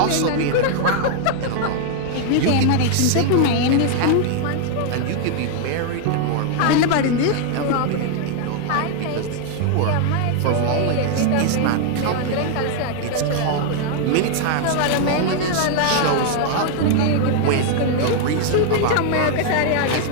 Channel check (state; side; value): different; both; correlation 0.00